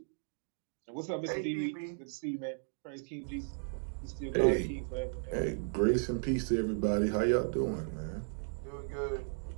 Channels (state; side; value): silent; left; digital silence